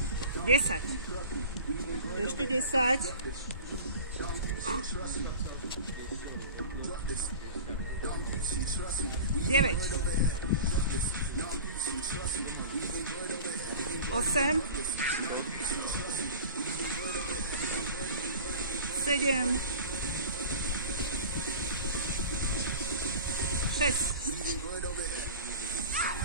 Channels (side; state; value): both; inverted; correlation -0.37